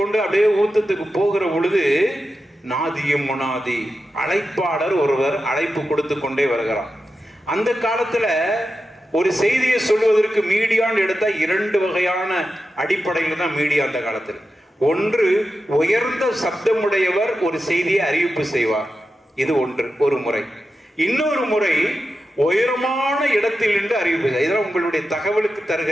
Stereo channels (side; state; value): both; normal; correlation 0.91